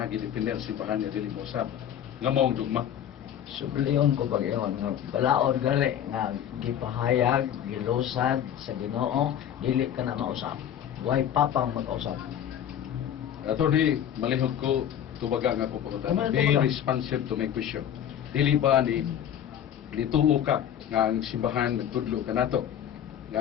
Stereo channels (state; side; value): quieter; right; 9.9 dB